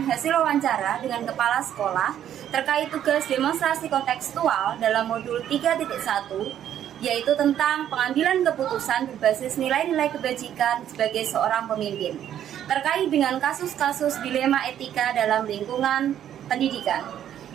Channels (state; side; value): quieter; left; 10.5 dB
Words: hasil wawancara dengan kepala sekolah terkait tugas demonstrasi kontekstual dalam modul 3.1, yaitu tentang pengambilan keputusan berbasis nilai-nilai kebajikan sebagai seorang pemimpin, terkait dengan kasus-kasus dilema etika dalam lingkungan pendidikan.